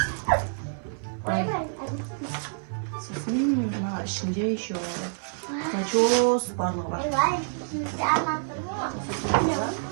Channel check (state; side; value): silent; left; 60 dB below the other